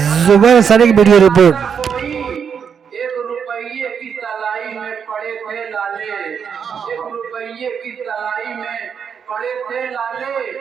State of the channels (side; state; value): left; quieter; 7.1 dB